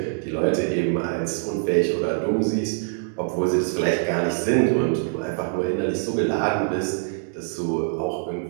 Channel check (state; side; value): silent; left; digital silence